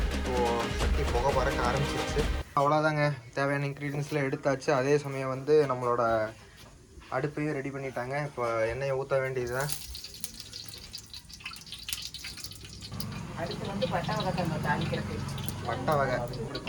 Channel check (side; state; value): both; identical; correlation 1.00